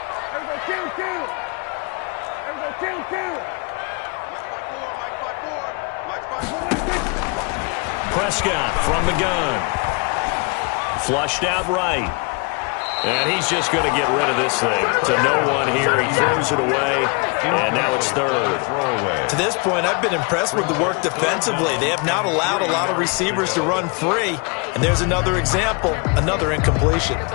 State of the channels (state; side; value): quieter; right; 31.7 dB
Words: Prescott from the gun. Flushed out right. And he's just going to get rid of this thing. To no one here. He throws it away. And now it's 3rd. To this point, I've been impressed with the work defensively. They have not allowed a lot of receivers to run free. And there's another example, another incompletion.